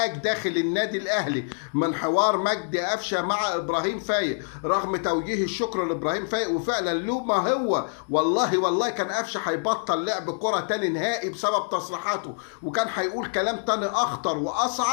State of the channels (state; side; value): silent; right; digital silence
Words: داخل النادي الاهلي من حوار مجدي قفشه مع ابراهيم فايق، رغم توجيه الشكر لابراهيم فايق. وفعلا له ما هو، والله كان قفشه هيبطل لعب كره تاني نهائي بسبب تصريحاته، وكان هيقول كلام تاني اخطر